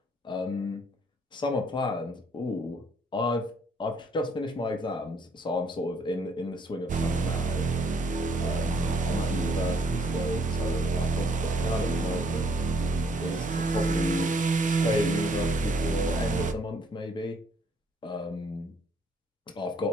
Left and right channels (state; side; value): normal; both; correlation 0.67